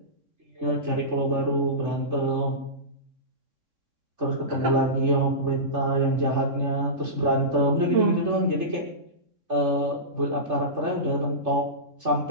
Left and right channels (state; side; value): late; left; 3.6 ms